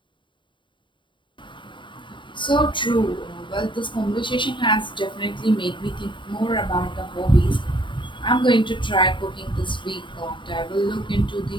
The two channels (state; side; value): late; right; 0.23 ms